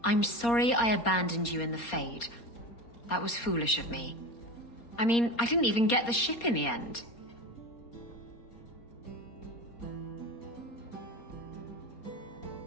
I'm sorry I abandoned you in the Fade. That was foolish of me. I mean, I didn't even get the ship in the end.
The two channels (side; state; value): right; late; 4.3 ms